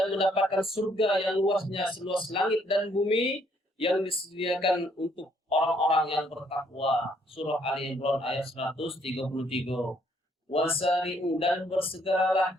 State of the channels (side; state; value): both; normal; correlation 0.68